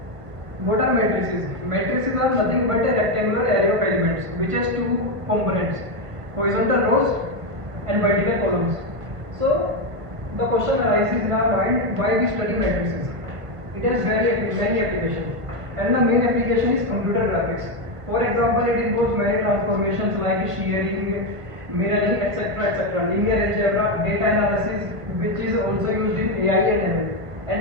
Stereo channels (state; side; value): late; left; 1.5 ms